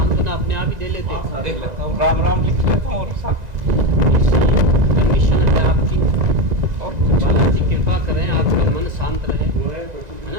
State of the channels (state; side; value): late; left; 1.9 ms